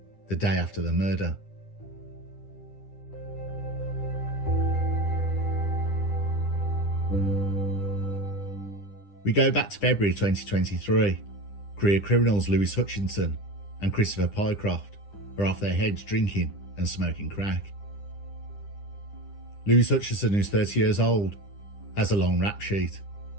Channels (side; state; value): right; late; 10 ms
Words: the day after the murder. We go back to February 2023. Career criminals Lewis Hutchinson and Christopher Pycroft are off their heads drinking and smoking crack. Lewis Hutchinson, who's 30 years old, has a long rap sheet.